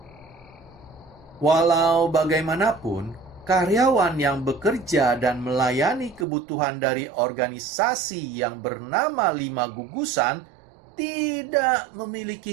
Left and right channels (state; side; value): drops out; left; at 6.2 s